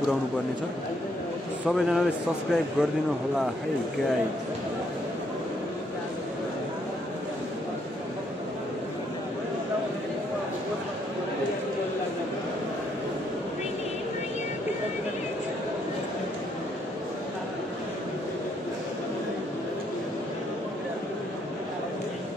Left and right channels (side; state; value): both; normal; correlation 0.71